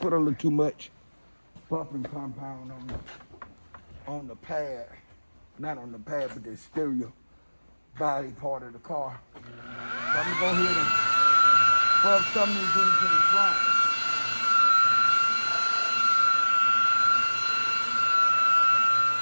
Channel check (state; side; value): inverted; both; correlation -1.00